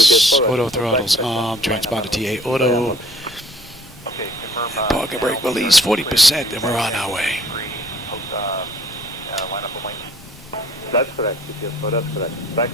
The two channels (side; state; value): both; normal; correlation 0.57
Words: Auto throttles on. Transponder TA auto. Okay, confirm. Parking brake release 40%, and we're on our way. Line up the wing. That's correct, UPS 4, that's correct.